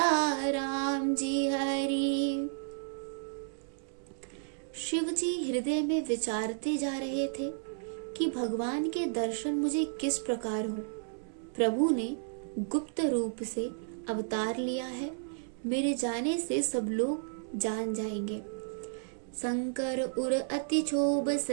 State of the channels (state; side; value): silent; left; digital silence